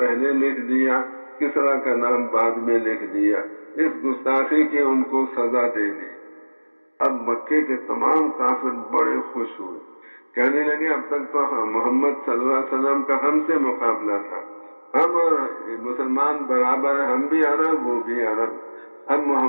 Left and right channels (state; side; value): inverted; both; correlation -1.00